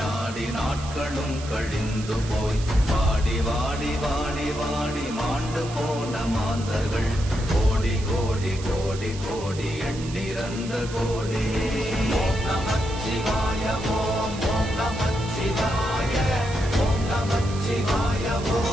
நாடி நாட்களும் கழிந்து போய் வாடி வாடி வாடி வாடி மாண்டு போன மாந்தர்கள் கோடி கோடி கோடி கோடி எண்ணிறந்த கோடி. ஓம் நமச்சிவாய ஓம் ஓம் நமச்சிவாய ஓம் நமச்சிவாய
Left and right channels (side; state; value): right; noise; hiss, 14 dB below the sound